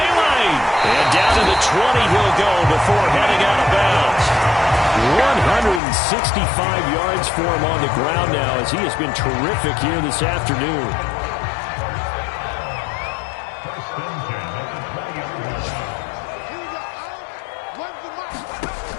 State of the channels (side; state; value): right; drops out; at 5.8 s